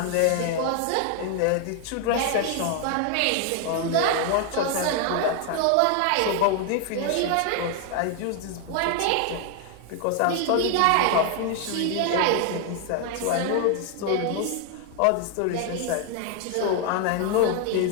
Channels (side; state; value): both; different; correlation 0.00